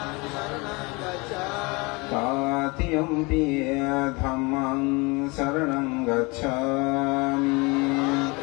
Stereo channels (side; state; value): right; quieter; 26.8 dB